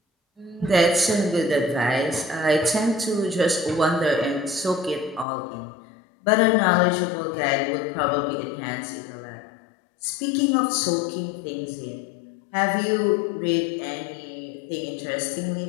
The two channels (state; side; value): drops out; right; at 5.2 s